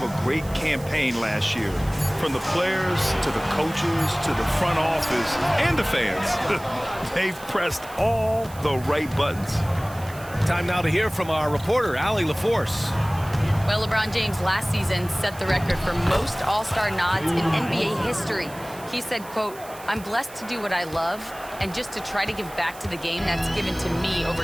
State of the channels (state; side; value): noise; right; hiss, 19 dB below the sound